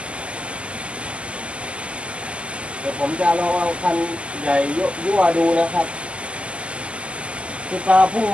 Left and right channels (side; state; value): left; late; 0.055 ms